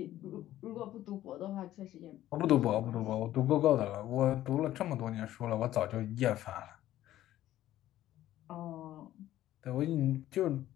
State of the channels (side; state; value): right; quieter; 13.7 dB